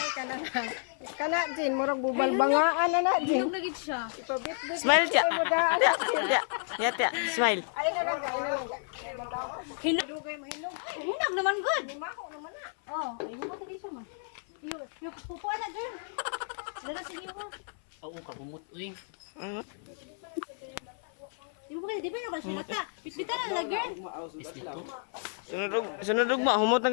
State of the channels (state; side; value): silent; right; 57 dB below the other